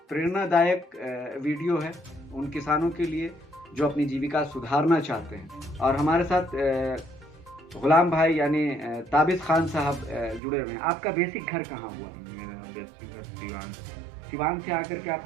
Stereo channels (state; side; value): drops out; left; at 10.4 s